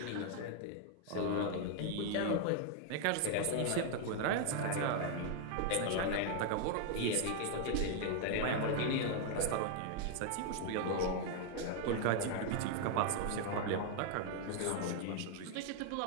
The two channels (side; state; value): both; different; correlation 0.00